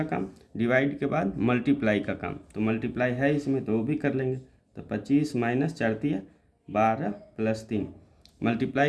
काम, डिवाइड के बाद मल्टीप्लाई का काम, तो मल्टीप्लाई है इसमें तो वो भी कर लेंगे। तो 25 - 4 × 12 प्लस 3।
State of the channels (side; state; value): both; identical; correlation 1.00